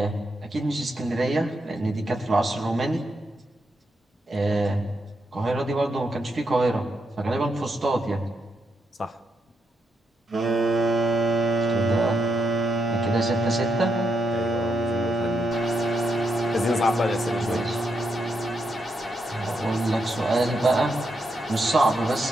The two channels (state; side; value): normal; both; correlation 0.81